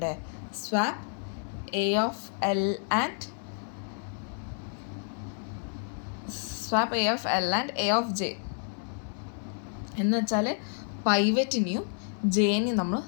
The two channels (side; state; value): right; silent; 58 dB below the other